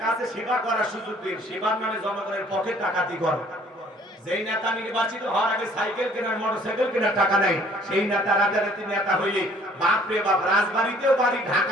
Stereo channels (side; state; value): both; normal; correlation 0.57